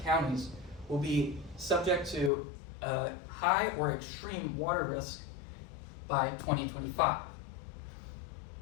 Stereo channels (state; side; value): drops out; right; at 2.3 s